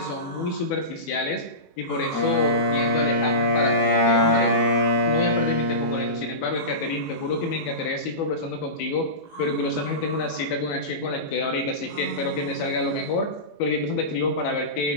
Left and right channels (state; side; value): late; right; 18 ms